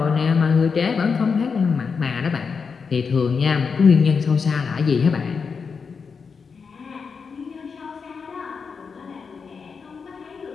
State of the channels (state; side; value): quieter; right; 5.5 dB